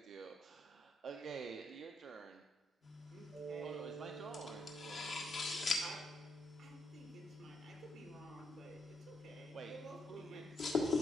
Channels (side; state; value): both; normal; correlation 0.78